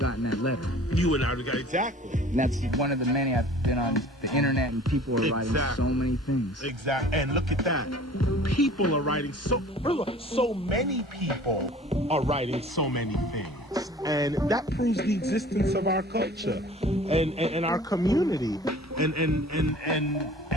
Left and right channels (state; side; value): normal; both; correlation 0.47